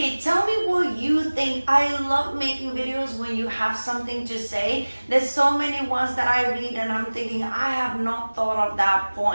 Tell me what you think. I love making videos when you have something to say. There's so many ones that I read and I'm thinking, I have not thought of that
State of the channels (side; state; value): both; inverted; correlation -1.00